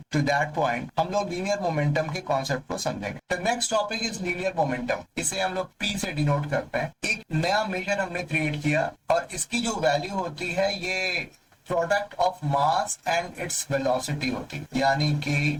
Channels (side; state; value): both; identical; correlation 1.00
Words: to that point हम लोग लीनियर मोमेंटम के कॉन्सेप्ट को समझेंगे। The next topic is linear momentum. इसे हम लोग P से डिनोट करते हैं। एक नया मेजर हमने क्रिएट किया और इसकी जो वैल्यू होती है ये product of mass and its velocity होती है, यानी कि